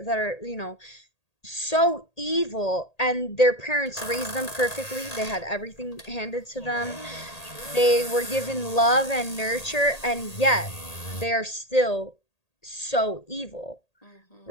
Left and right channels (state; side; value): late; right; 1.8 ms